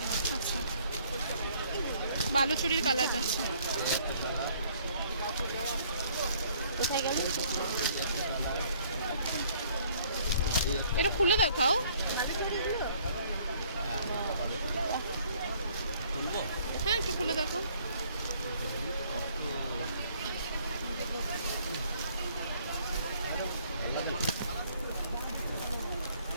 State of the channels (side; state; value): both; inverted; correlation -0.61